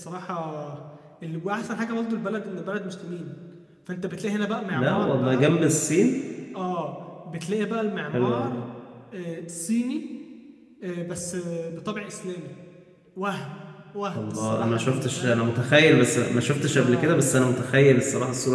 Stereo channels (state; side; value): identical; both; correlation 1.00